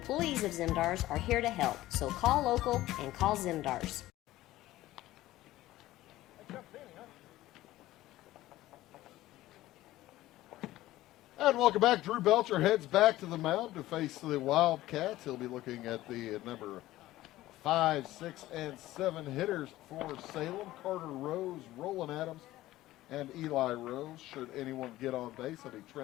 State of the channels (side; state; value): right; quieter; 16.0 dB